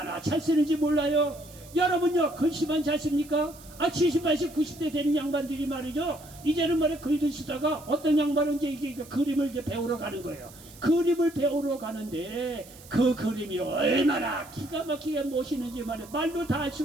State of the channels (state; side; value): noise; right; hiss, 21 dB below the sound